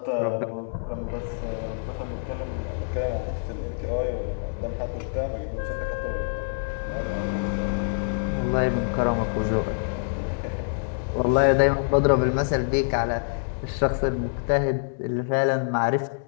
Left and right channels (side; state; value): right; silent; digital silence